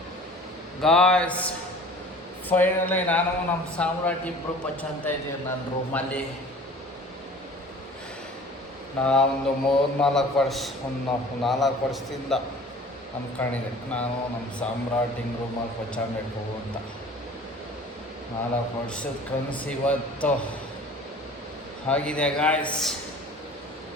ಗಾಯ್ಸ್. ಫೈನಲಿ ನಾನು ನಮ್ಮ ಸಾಮ್ರಾಟ್ ಇಬ್ಬರು ಪಚ್ಚಂತ ಇದ್ದೀವಿ ನನ್ನ ರೂಮಲ್ಲಿ. ನಾವೊಂದು 4 ವರ್ಷದಿಂದ ಅಂದ್ಕೊಂಡಿದ್ದೆ ನಾನು ನಮ್ಮ ಸಾಮ್ರಾಟ್ ಹಿಂಗೆ ರೂಮಲ್ಲಿ ಪಚ್ಚಾಂಬೇಕು ಅಂತ. 4 ವರ್ಷದ ಕನಸು ಇವತ್ತು ಆಗಿದೆ ಗಾಯ್ಸ್.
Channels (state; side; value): normal; both; correlation 0.45